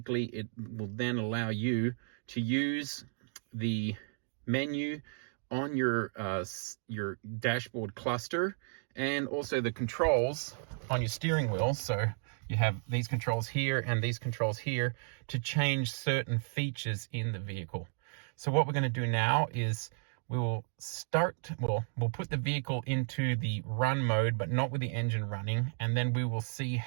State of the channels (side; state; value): left; silent; digital silence